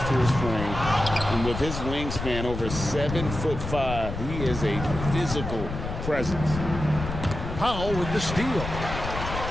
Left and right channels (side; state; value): left; noise; rumble, 6 dB below the sound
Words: to his frame. And with his wingspan over 7'5", he is a physical presence. Powell with the steal.